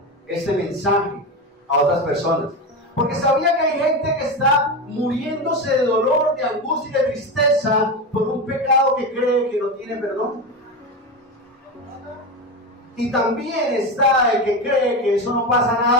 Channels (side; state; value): both; normal; correlation 0.18